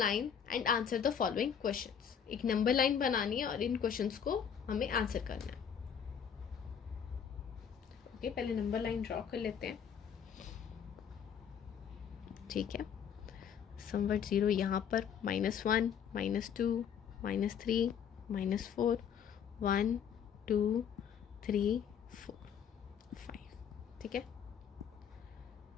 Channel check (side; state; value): right; quieter; 7.9 dB